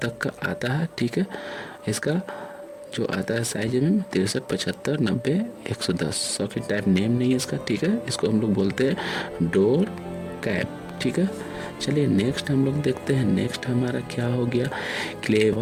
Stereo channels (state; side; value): identical; both; correlation 1.00